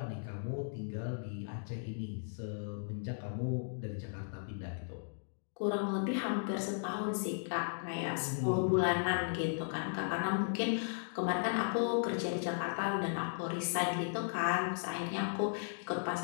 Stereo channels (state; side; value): silent; right; digital silence